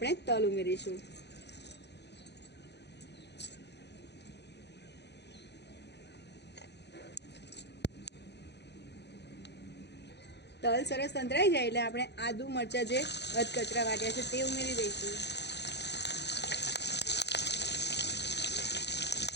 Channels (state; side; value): late; right; 0.50 ms